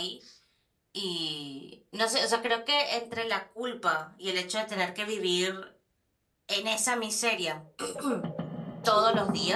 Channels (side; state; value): both; identical; correlation 1.00